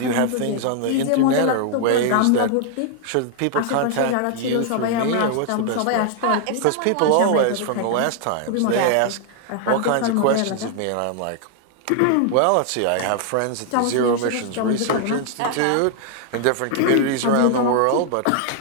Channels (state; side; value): different; both; correlation 0.00